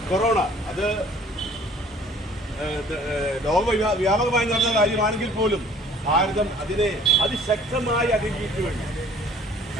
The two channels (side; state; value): both; normal; correlation 0.53